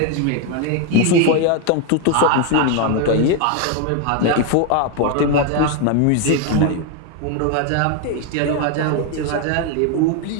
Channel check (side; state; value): both; different; correlation 0.01